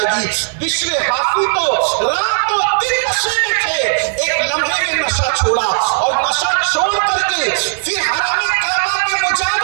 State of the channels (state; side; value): silent; left; 67 dB below the other